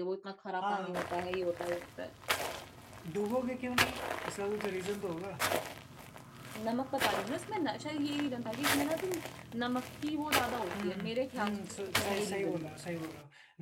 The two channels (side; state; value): both; identical; correlation 1.00